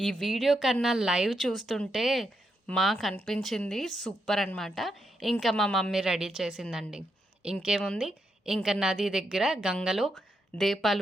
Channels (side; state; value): both; normal; correlation 0.82